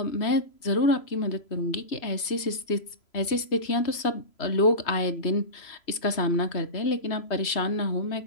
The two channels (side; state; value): right; late; 3.0 ms